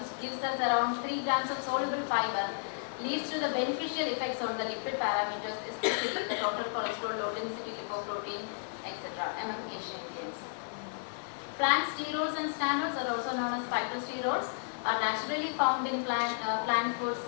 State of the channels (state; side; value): silent; right; digital silence